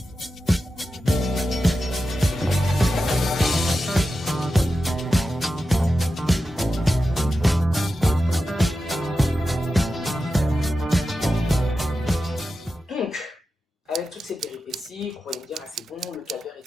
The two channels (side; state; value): both; normal; correlation 0.91